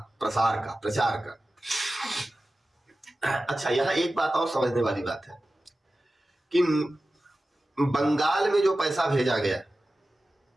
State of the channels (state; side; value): normal; both; correlation 0.95